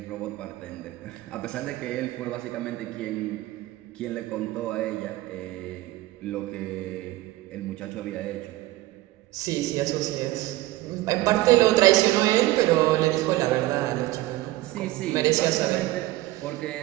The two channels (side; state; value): left; quieter; 17.6 dB